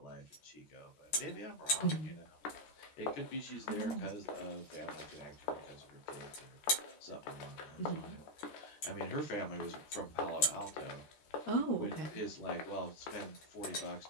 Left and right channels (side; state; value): right; late; 13 ms